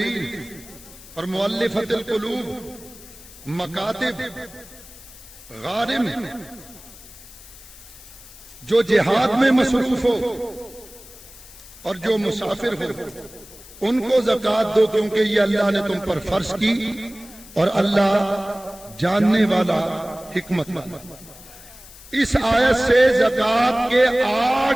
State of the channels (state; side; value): noise; left; hiss, 19 dB below the sound